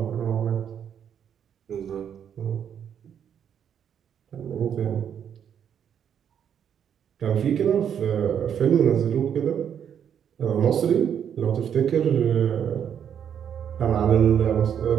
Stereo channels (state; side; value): quieter; left; 8.6 dB